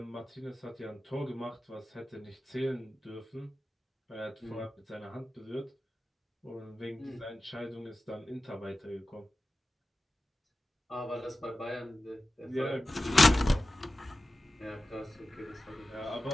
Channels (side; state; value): both; normal; correlation 0.95